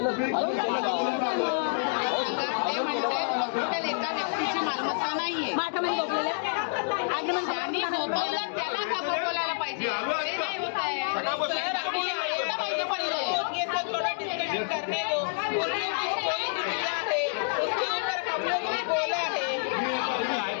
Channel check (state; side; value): silent; right; digital silence